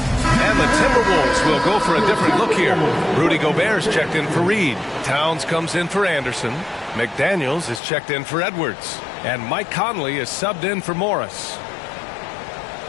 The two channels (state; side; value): drops out; right; at 7.8 s